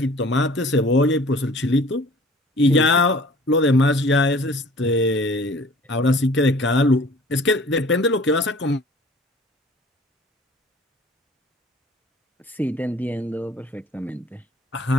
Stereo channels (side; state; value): both; normal; correlation 0.49